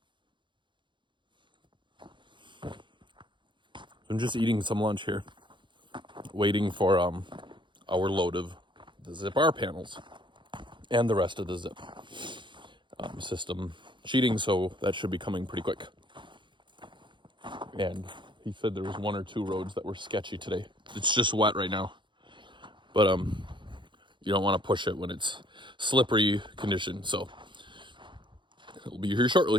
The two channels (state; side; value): late; left; 0.23 ms